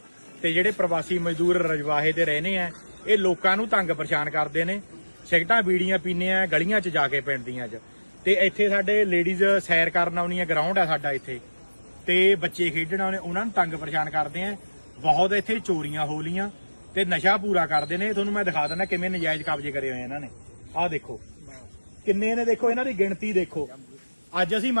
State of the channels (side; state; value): both; inverted; correlation -1.00